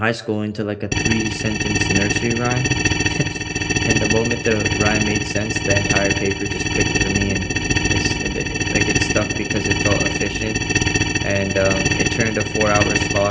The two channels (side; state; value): both; identical; correlation 1.00